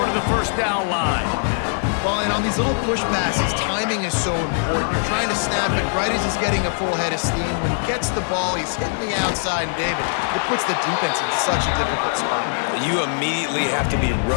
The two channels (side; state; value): right; silent; 61 dB below the other